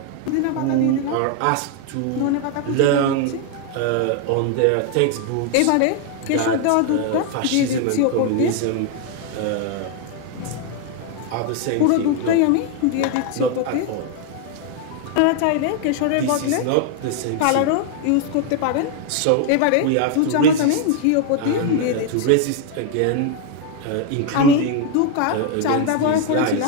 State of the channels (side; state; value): both; different; correlation 0.01